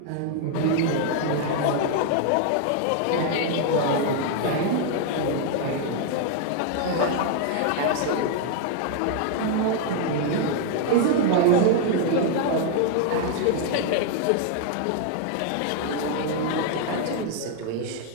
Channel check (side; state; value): both; different; correlation 0.00